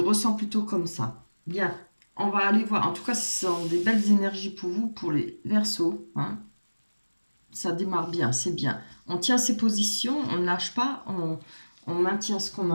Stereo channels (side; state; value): both; inverted; correlation -1.00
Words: plutôt comme ça. Bien, on va aller voir. En tout cas, ce sont des belles énergies pour vous, pour les Verseaux, hein. Ça démarre bien, c'est bien. On tient ses positions, on ne lâche pas, on maintient ce qu'on a